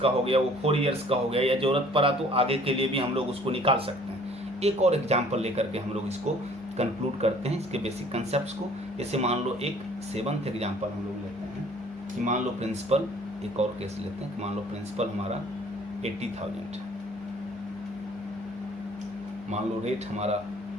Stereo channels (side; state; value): both; normal; correlation 0.55